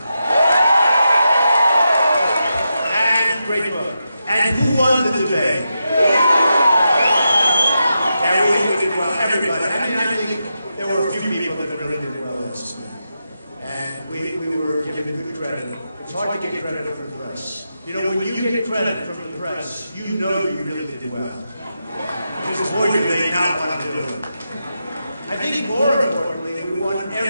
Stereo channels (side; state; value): both; inverted; correlation -0.87